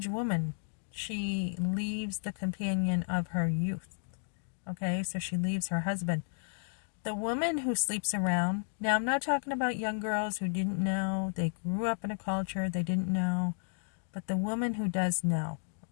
woman, she leaves the companion of her youth. Okay, so she leaves her husband. The woman who sleeps around, now I'm not talking about young girls who didn't know, they grew up in a culture, they didn't know. But the woman who does know,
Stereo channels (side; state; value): right; silent; digital silence